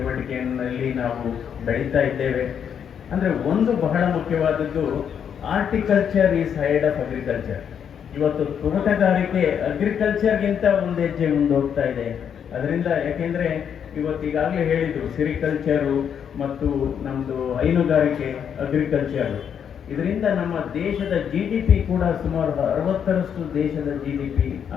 ನಾವು ಬೆಳೀತಾ ಇದ್ದೇವೆ. ಅಂದರೆ ಒಂದು ಬಹಳ ಮುಖ್ಯವಾದದ್ದು, horticulture is head of agriculture. ಇವತ್ತು ತೋಟಗಾರಿಕೆ ಅಗ್ರಿಕಲ್ಚರ್ಗಿಂತ ಒಂದು ಹೆಜ್ಜೆ ಮುಂದೆ ಹೋಗ್ತಾ ಇದೆ. ಅದರಿಂದ ಯಾಕೆಂದರೆ ಇವತ್ತು ಈಗಾಗಲೇ ಹೇಳಿದರು, ಸಿರಿಕಲ್ಚರು ಮತ್ತು ನಮ್ಮದು ಹೈನುಗಾರಿಕೆ ಅಗ್ರಿಕಲ್ಚರು, ಇದರಿಂದ ನಮ್ಮ ದೇಶದ GDP ಕೂಡ ಸುಮಾರು 60% ದೇಶದ GDP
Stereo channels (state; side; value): quieter; right; 8.1 dB